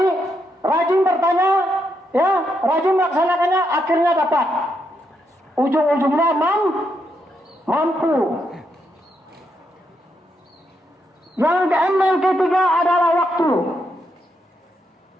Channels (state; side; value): normal; both; correlation 0.80